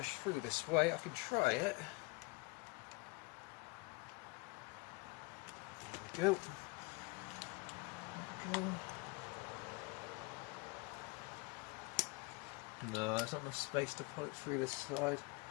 through this way. I can try it. There we go. No, there's not enough space to pull it through this side.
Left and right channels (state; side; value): quieter; right; 26.7 dB